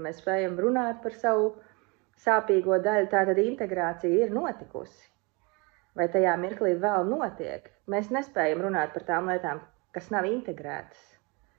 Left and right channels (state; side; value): quieter; left; 29.3 dB